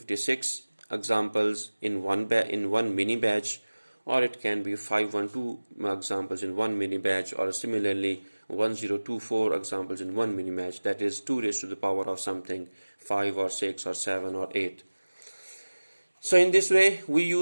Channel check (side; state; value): both; inverted; correlation -1.00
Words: examples in one mini batch, or it can be 512 examples in one mini batch, or similarly 1024 examples in one mini batch, that is 2 raised to the power of something, 5 or 6 or 7 or 8. So in this way we